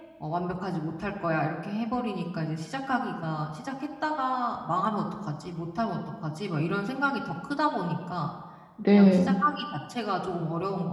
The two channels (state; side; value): identical; both; correlation 1.00